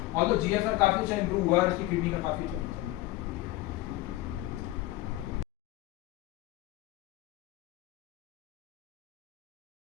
और तो GFR काफ़ी अच्छा इंप्रूव हुआ, और इसकी किडनी का काफ़ी अच्छा।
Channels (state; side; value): quieter; right; 17.4 dB